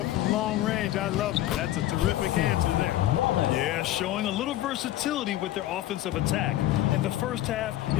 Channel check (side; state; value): right; quieter; 14.2 dB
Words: from long range. I love it. That's a terrific answer there. Yeah, showing a little versatility with their offensive attack. In the first half,